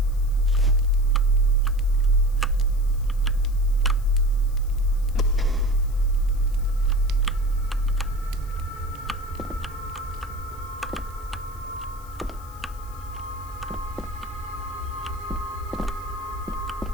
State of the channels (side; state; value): left; noise; hiss, 23 dB below the sound